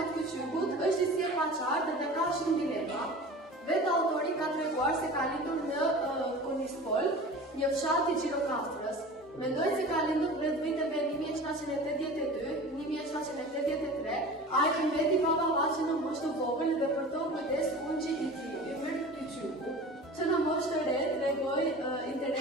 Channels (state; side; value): normal; both; correlation 0.37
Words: Kyçykut është i sillpaqartë dhe ka shumë dilema. Vetë autori ka treguar se ka lindur në Konispol, një fshat i Gjirokastrës. Mendoj se ka lindur rreth viteve 1782-1783, ai mbeti baballaqe në moshë të vogël dhe për to kujdes ungji i tij, emër Kyçyku, që në moshë të re tregoi